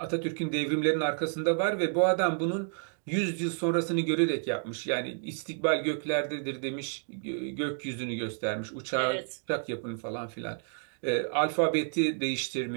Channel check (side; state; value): left; silent; 58 dB below the other